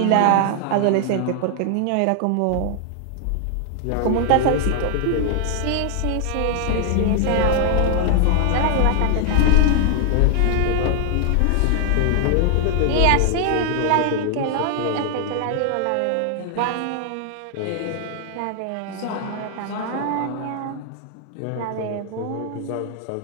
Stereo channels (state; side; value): different; both; correlation 0.00